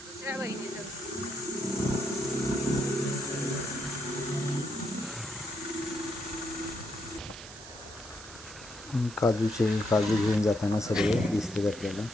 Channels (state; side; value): noise; right; hiss, 16 dB below the sound